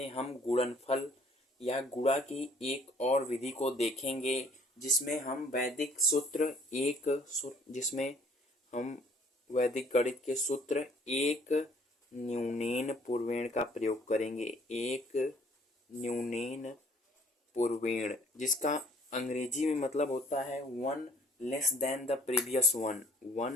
हम गुणनफल या गुणा की एक और विधि को देखेंगे, जिसमें हम वैदिक सूत्र जिसमें हम वैदिक गणित के सूत्र एक न्यूनेन पूर्वेण का प्रयोग करेंगे। एक न्यूनेन पूर्वेण, जिसका अंग्रेजी में मतलब होता है one less than the previous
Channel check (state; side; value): normal; both; correlation 0.59